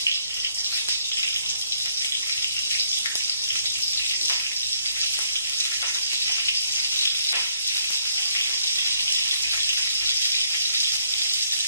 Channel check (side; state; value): both; inverted; correlation -0.69